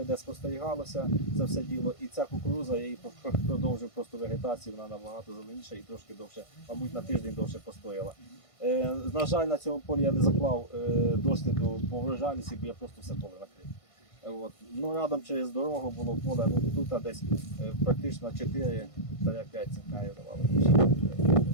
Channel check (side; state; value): right; late; 1.5 ms